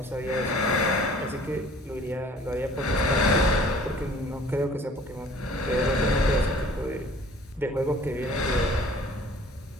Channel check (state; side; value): normal; both; correlation 0.51